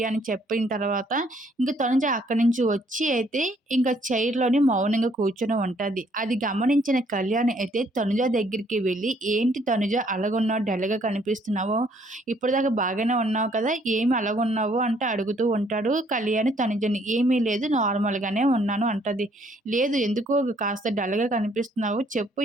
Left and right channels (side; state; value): both; normal; correlation 0.65